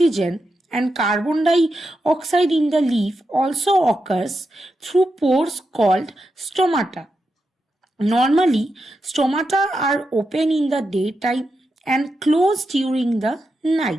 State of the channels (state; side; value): normal; both; correlation 0.87